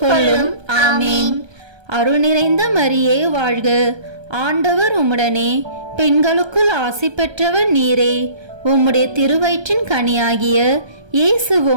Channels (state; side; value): late; left; 1.3 ms